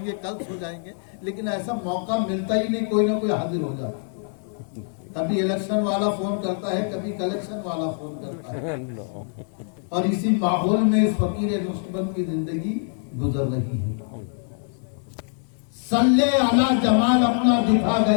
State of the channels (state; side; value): silent; right; 62 dB below the other